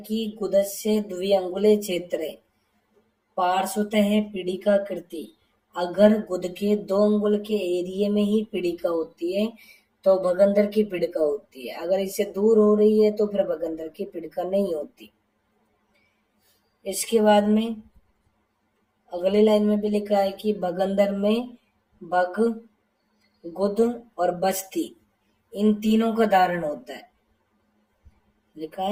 गुदस्य द्विअंगुले क्षेत्रे पार्श्वतः पीड़िका कृति, अगर गुद के 2 अंगुल के एरिए में ही पीड़िका होती है तो भगंदर की पीड़िका होती है। अगर इससे दूर हो रही है तो फिर भगंदर की पीड़िका नहीं होती। इसके बाद में अगली लाइन में भी लिखा है कि भगंदर में भग, गुद और बस्ती, इन तीनों का धारण होता है। लिखा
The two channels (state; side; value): identical; both; correlation 1.00